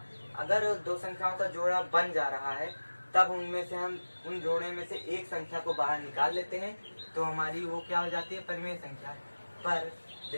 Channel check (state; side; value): inverted; both; correlation -1.00